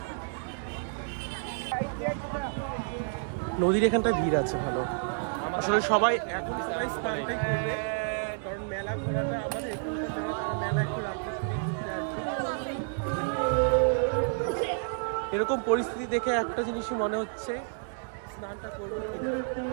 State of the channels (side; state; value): left; silent; digital silence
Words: নদীর এখানটায় ভিড় আছে ভালো। আসলে সবাই স্নানটাই করবে, কারণ মেলা ঘোরাটা আমাদের এখানকার মেলা, তারা মেলা একটু রাত্রে ঘুরতে আসছে। এরকম পরিস্থিতি দেখে একটা জিনিসই মনে হচ্ছে, স্নানটা করবো।